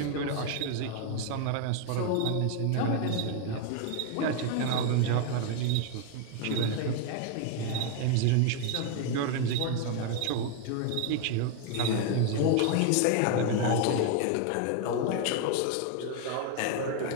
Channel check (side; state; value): both; different; correlation 0.01